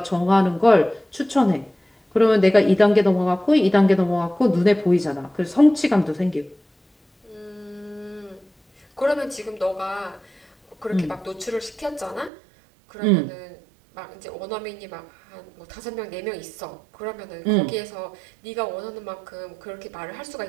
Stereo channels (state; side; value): drops out; left; at 12.3 s